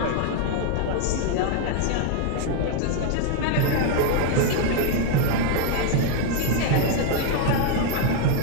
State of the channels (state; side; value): different; both; correlation 0.01